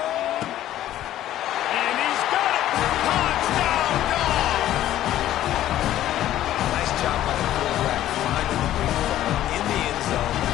And he's got it. Touchdown, Dogs! Nice job by the quarterback finding the big ball in the end zone.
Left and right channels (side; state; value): right; quieter; 13.0 dB